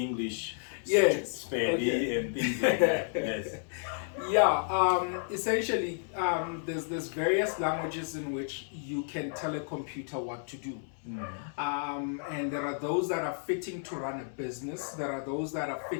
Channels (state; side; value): silent; right; digital silence